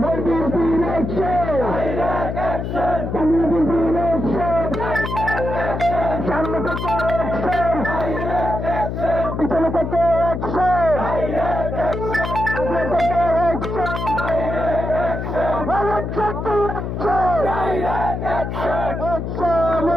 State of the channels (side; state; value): left; noise; hum, 4 dB below the sound